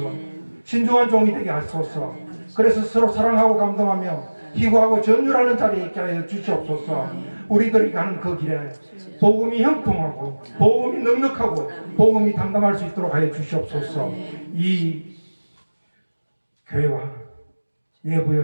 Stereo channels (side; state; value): both; inverted; correlation -1.00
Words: 신중한 종이 되게 하소서. 그래서 서로 사랑하고 감동하며 희구하고 전율하는 자리에 있게 하여 주시옵소서. 우리들이 가는 그 길에 복음이 형통하고 복음이 넉넉하고 복음이 담당할 수 있도록 하여 주시옵소서. 이 교회와